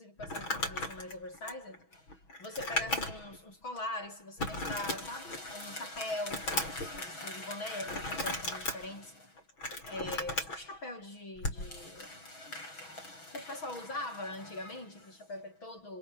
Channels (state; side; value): late; right; 6.2 ms